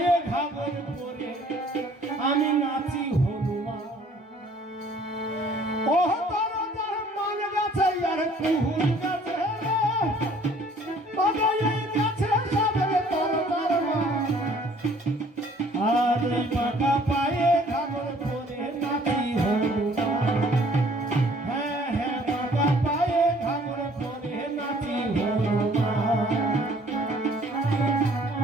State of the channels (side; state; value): both; normal; correlation 0.57